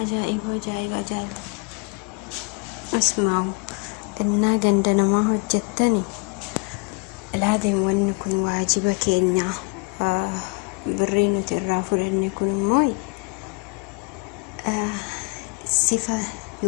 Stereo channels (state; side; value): quieter; right; 29.5 dB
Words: عجائب وجائب عجائب اسمعوا إنا قندنا ما هو جتني العظيم وأن يكون واجبك إني برينو ترافر أن يكون موي صفة